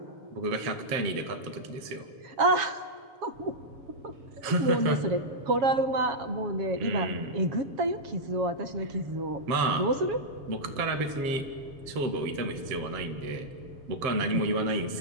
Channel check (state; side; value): late; left; 7.3 ms